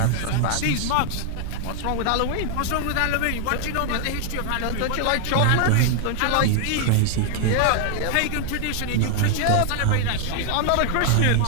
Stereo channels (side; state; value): both; different; correlation 0.00